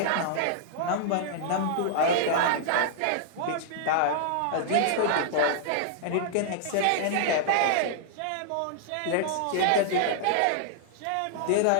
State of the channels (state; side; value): different; both; correlation -0.01